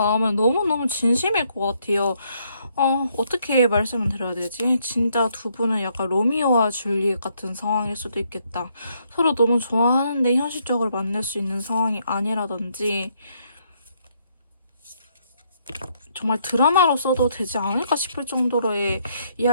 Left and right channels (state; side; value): inverted; both; correlation -0.72